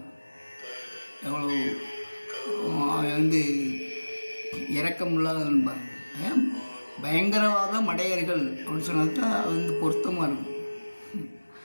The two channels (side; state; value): both; inverted; correlation -1.00